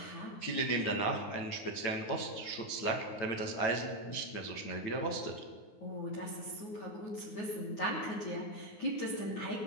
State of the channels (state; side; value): late; right; 9.6 ms